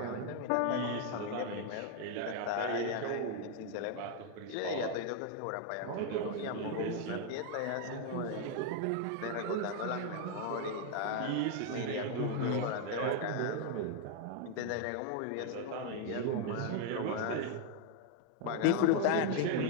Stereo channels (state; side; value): different; both; correlation 0.00